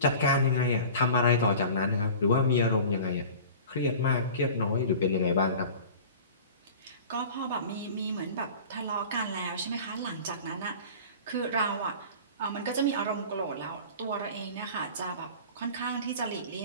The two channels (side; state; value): both; inverted; correlation -0.40